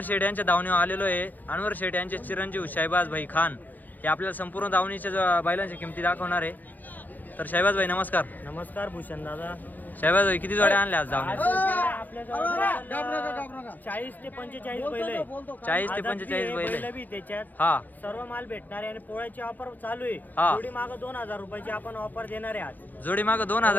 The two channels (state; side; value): late; right; 0.084 ms